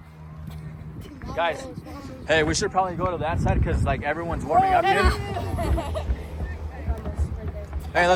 Guys, hey, we should probably go to that side because like everyone's warming up here. Hey,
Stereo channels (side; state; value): both; identical; correlation 1.00